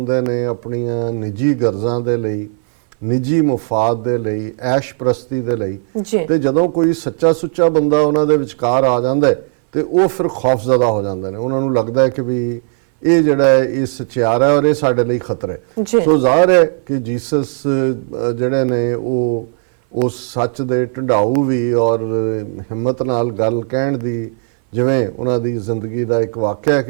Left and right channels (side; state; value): left; silent; 60 dB below the other